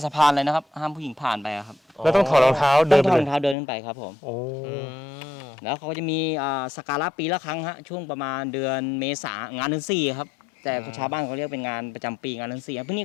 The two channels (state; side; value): drops out; right; at 3.6 s